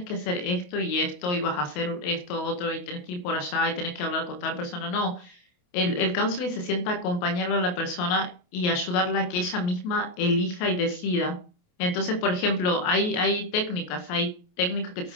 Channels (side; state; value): right; late; 28 ms